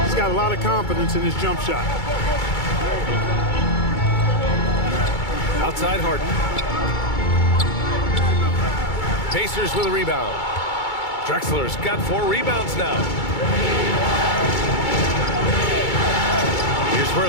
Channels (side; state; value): right; late; 2.3 ms